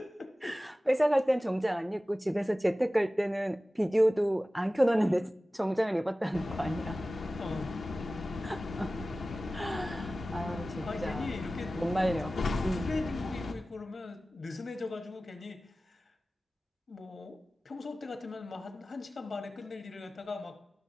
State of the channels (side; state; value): both; normal; correlation 0.96